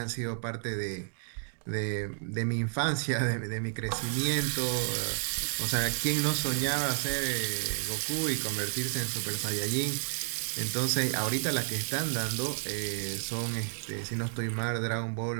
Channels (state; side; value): silent; left; digital silence